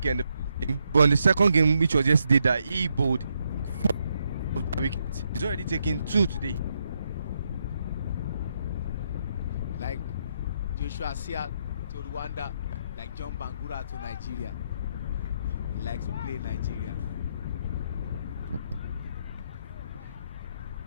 in the game, but in the second game, which was yesterday, that he bowled 4 wickets. He's already taken 2 today. Like Joshua Sia to Rwanda, like John Bangura to Nigeria. He likes to play Nigeria.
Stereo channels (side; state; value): both; inverted; correlation -0.78